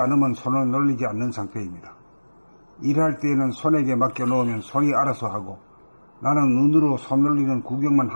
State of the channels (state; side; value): inverted; both; correlation -1.00